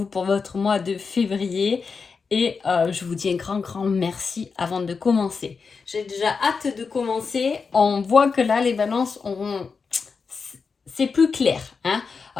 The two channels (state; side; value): quieter; right; 5.1 dB